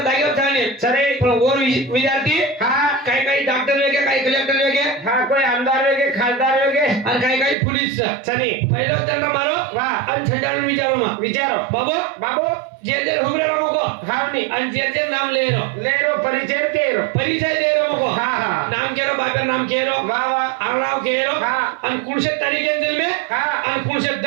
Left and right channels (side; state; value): left; drops out; at 7.6 s